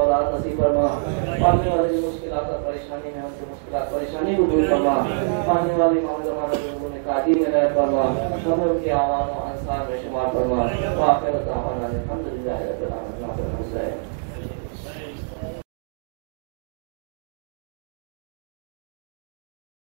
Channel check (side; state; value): left; silent; digital silence